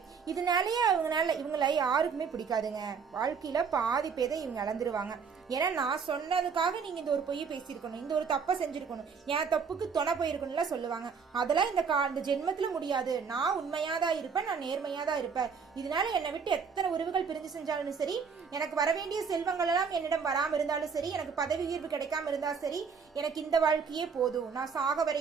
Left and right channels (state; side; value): quieter; left; 5.9 dB